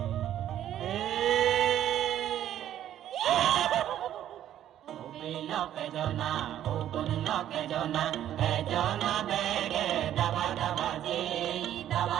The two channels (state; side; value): quieter; left; 11.4 dB